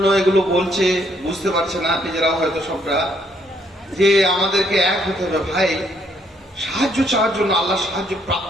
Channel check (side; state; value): both; normal; correlation 0.70